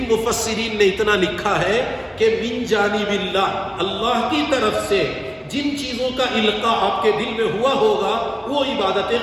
مفسرین نے اتنا لکھا ہے کہ من جانب اللہ کی طرف سے جن چیزوں کا القاء آپ کے دل میں ہوا ہوگا وہ عبادتیں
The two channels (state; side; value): identical; both; correlation 1.00